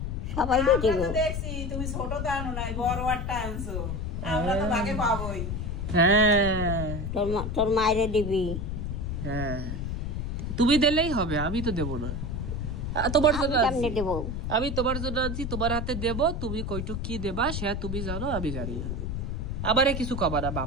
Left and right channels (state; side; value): noise; left; rumble, 3 dB below the sound